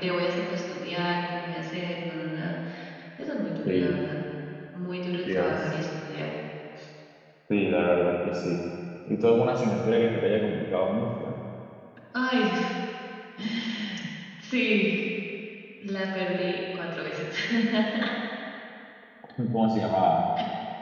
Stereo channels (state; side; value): identical; both; correlation 1.00